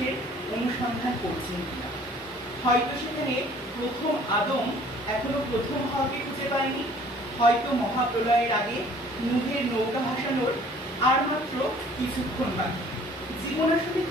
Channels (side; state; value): both; normal; correlation 0.54